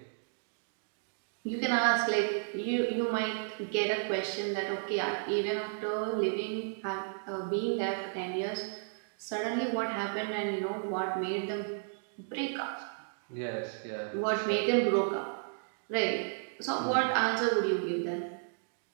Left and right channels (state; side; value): silent; left; digital silence